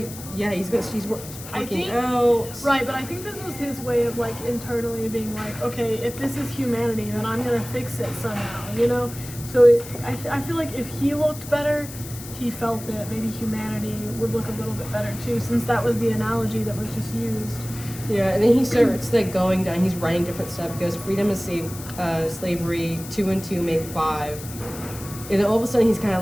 he's I working think- out. Right, but I think this was his way of like internally being like, okay, if this is humanity, then I'm gonna fix it somehow, you know. So I feel like if he looked better, he felt that maybe humanity would look a little bit better too, since that was the analogy that was just used. Yeah, and then he starts like going down. He's writing different stuff. He goes, freedom is slavery. 2 and 2 make 5. And then all of a sudden he's kind of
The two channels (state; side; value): noise; left; hiss, 14 dB below the sound